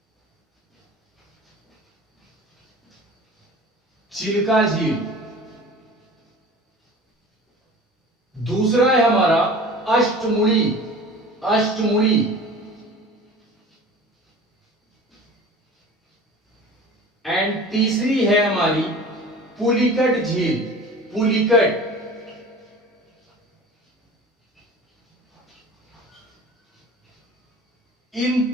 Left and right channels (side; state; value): both; normal; correlation 0.40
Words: चिल्का झील। दूसरा है हमारा अष्टमुड़ी। अष्टमुड़ी, एंड तीसरी है हमारी पुलिकट झील। पुलिकट, इन